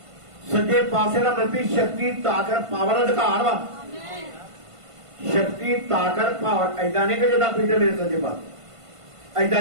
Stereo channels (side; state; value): left; late; 1.5 ms